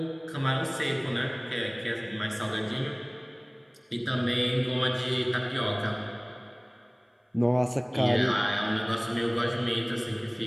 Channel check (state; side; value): identical; both; correlation 1.00